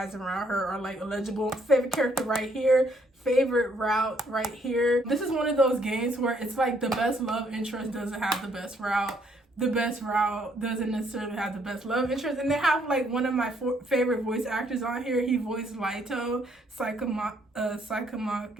around her are like illegible. Favorite character right here, favorite route right here. This is one of those games where it's like the best love interest doesn't have the best route. The best route doesn't necessarily have the best love interest. And they have like one of my favorite voice actors on here. He voiced Laito Sakamaki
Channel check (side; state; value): both; normal; correlation 0.68